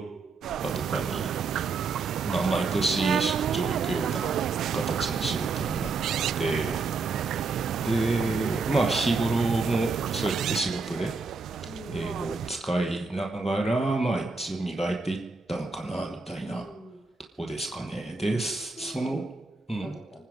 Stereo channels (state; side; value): quieter; left; 4.0 dB